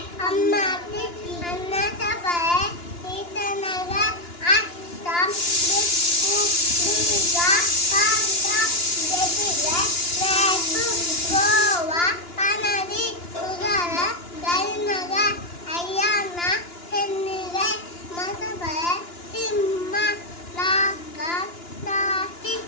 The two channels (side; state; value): right; late; 2.9 ms